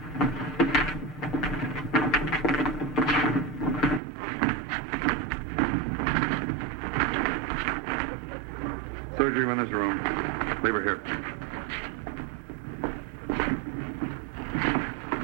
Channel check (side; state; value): left; drops out; at 4.0 s